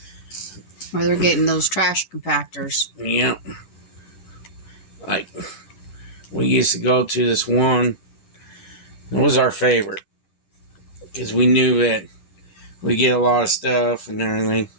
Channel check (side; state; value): right; late; 10 ms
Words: Or they're getting those trash compactors. Yep. Like, we used to go to this one. It was our favorite because we knew that we get a lot of stuff and everything.